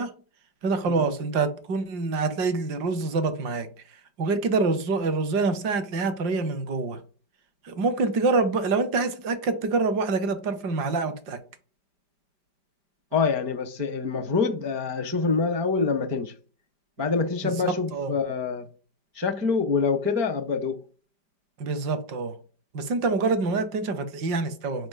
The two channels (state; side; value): late; left; 5.0 ms